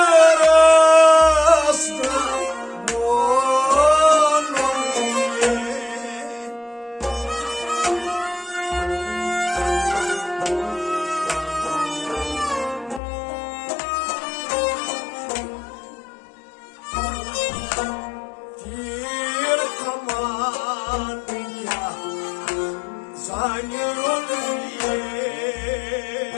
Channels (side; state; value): right; drops out; at 13.0 s